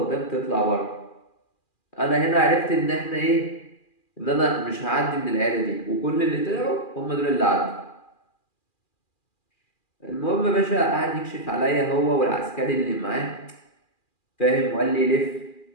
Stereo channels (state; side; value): late; right; 2.4 ms